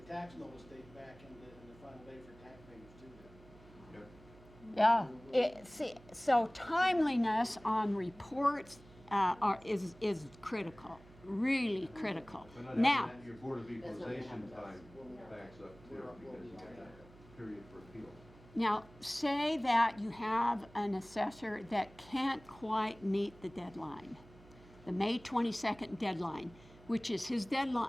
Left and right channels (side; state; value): right; noise; hum, 23 dB below the sound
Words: tax notice date back in the final day for tax payments too then. Yeah, so timeliness on reports is critical, really critical. But not Now, having that, your Board of Equalization time backs up too, because you got that period for appeal. now say that you have an assessor that can't quite meet the deadline, the May 22nd deadline, which is his